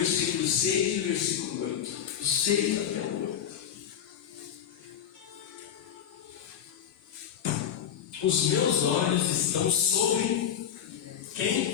6 e o versículo 8. O 6 até o 8. Os meus olhos estão sobre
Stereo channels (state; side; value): quieter; right; 9.3 dB